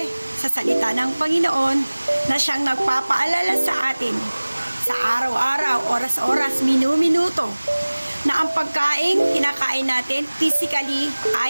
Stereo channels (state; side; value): inverted; both; correlation -1.00